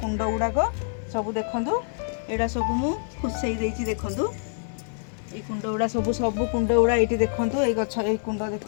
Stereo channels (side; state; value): right; silent; digital silence